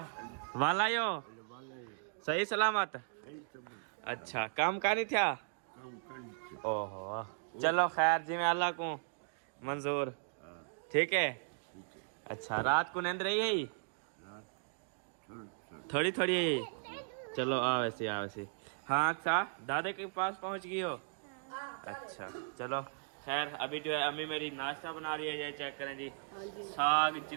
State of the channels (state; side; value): silent; left; digital silence